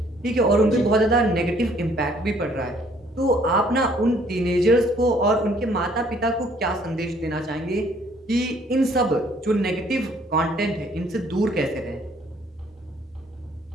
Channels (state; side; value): normal; both; correlation 0.62